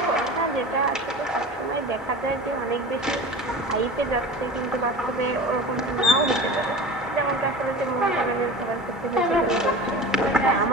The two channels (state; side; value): normal; both; correlation 0.34